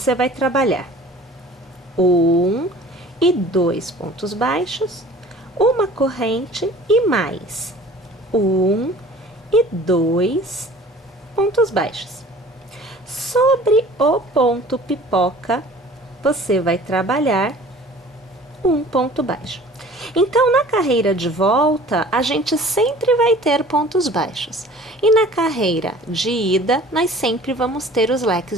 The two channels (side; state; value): both; normal; correlation 0.47